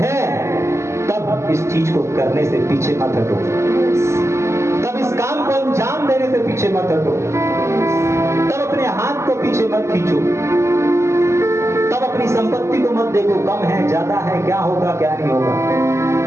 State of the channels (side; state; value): left; late; 0.13 ms